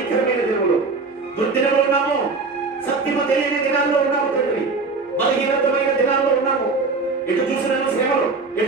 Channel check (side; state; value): left; quieter; 4.1 dB